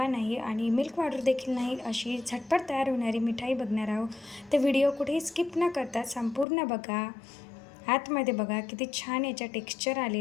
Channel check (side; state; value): right; drops out; at 6.5 s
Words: नाही आणि मिल्क पावडर देखील नाही अशी झटपट तयार होणारी मिठाई बघणार आहोत। तर व्हिडिओ कुठेही स्किप न करता संपूर्ण बघा। आतमध्ये बघा किती छान याचा टेक्स्चर